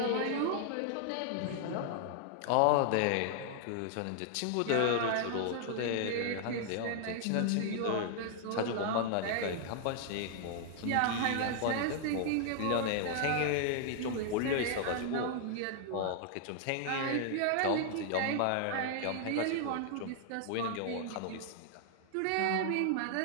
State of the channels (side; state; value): both; different; correlation 0.00